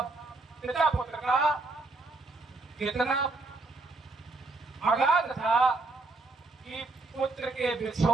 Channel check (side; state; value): left; quieter; 3.3 dB